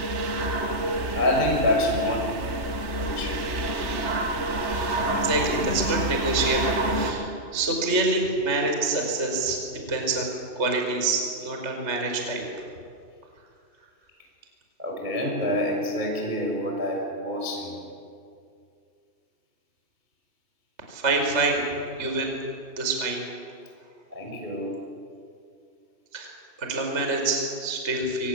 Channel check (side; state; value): left; late; 3.3 ms